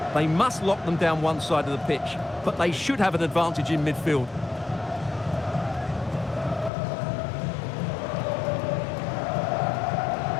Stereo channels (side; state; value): right; drops out; at 6.7 s